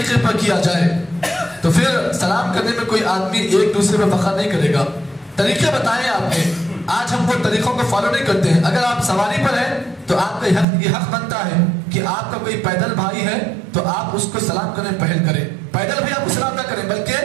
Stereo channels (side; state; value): left; drops out; at 10.7 s